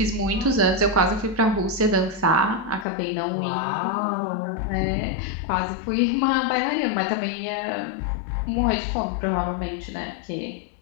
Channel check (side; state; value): right; drops out; at 2.9 s